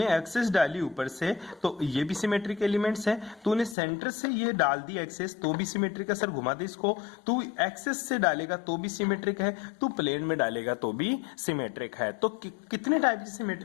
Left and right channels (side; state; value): right; drops out; at 3.8 s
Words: एक्सेस डाली ऊपर से तो ये भी सिमेट्रिक एलिमेंट्स है। तूने सेंटर से ये डाल दी एक्सेस तो भी सिमेट्रिक है, सर घुमा दे इसको, तू एक्सेस से डालेगा तो भी सिमेट्रिक है, तू प्लेन में डालेगा तो भी सिमेट्रिक है। तो कितने टाइप की